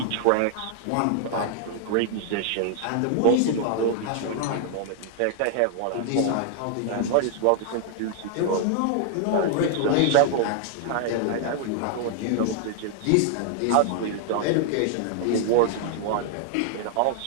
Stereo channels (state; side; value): different; both; correlation 0.00